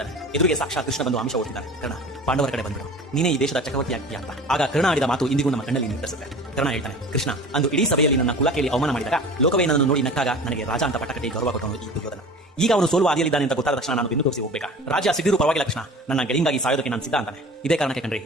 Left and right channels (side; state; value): both; normal; correlation 0.40